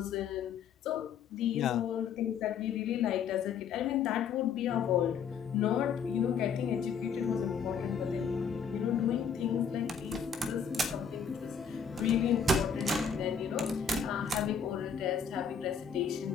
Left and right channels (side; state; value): right; quieter; 6.7 dB